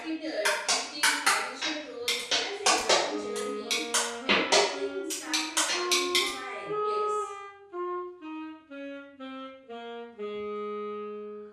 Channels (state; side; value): identical; both; correlation 1.00